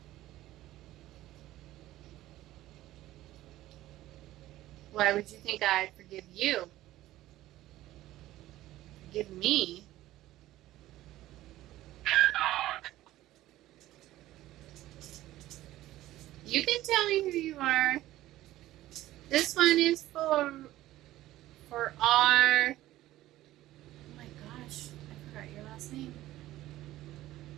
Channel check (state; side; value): quieter; left; 15.3 dB